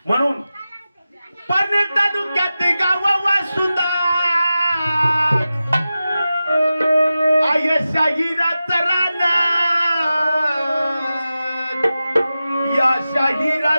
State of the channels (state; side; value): inverted; both; correlation -0.94